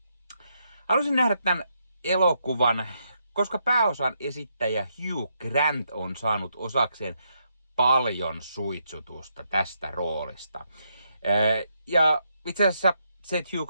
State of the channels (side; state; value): both; inverted; correlation -0.78